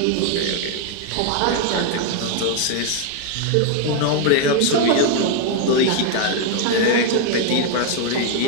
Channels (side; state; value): both; different; correlation 0.01